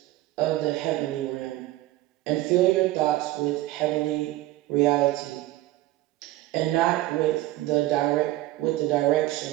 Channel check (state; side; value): quieter; left; 16.7 dB